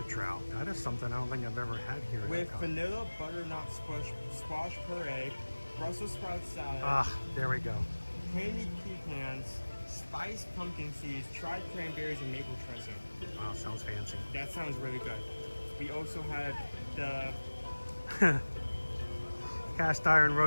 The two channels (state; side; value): inverted; both; correlation -1.00